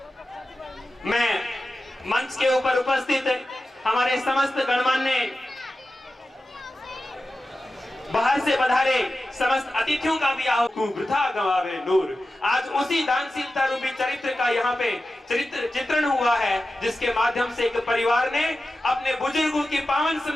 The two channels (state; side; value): normal; both; correlation 0.93